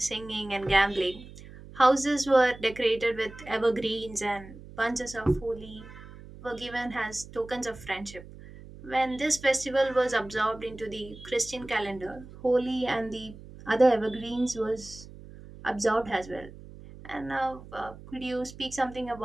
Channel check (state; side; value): noise; right; hum, 17 dB below the sound